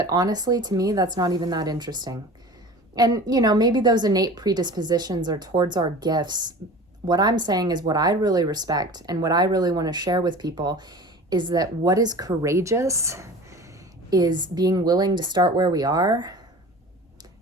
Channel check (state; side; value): normal; both; correlation 0.38